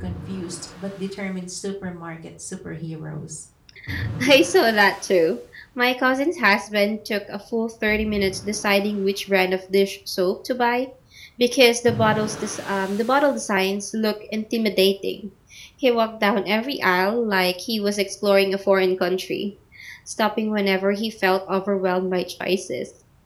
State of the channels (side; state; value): both; identical; correlation 1.00